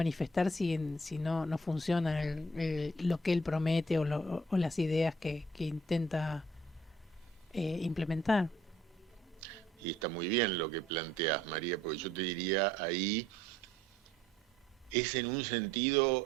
si no funciona lo que él promete o las ideas que intenta implementar? Y está muy bien lo que planteas, María, porque yo te diría ahí, es en un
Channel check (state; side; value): normal; both; correlation 0.61